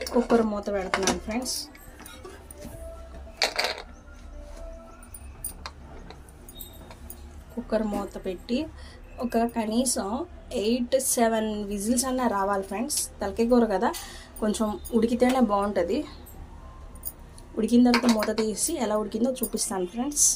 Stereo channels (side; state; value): both; identical; correlation 1.00